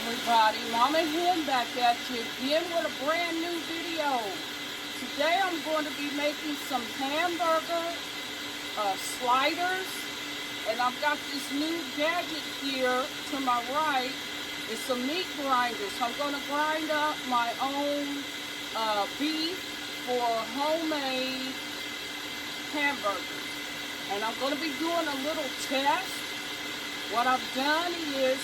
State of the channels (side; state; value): both; identical; correlation 1.00